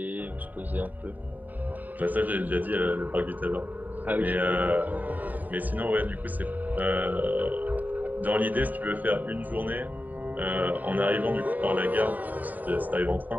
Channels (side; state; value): left; late; 0.083 ms